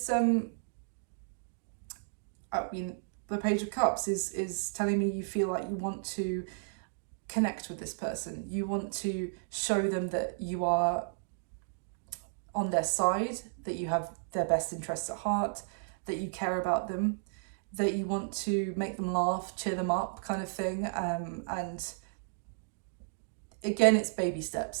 the Page of Cups is telling me you feel like you want to connect with this person. You want to show them that you are on their side, that you have their best interests at heart, that you care about them, that you want to make them laugh, cheer them up kind of thing. And again, it's baby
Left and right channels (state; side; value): silent; left; digital silence